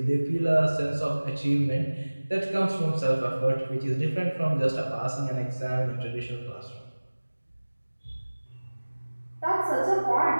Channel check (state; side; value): inverted; both; correlation -1.00